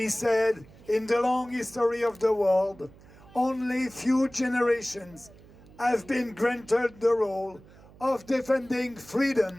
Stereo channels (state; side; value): noise; right; hum, 23 dB below the sound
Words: said, in the long history of the world, only few generations have been granted the role of defending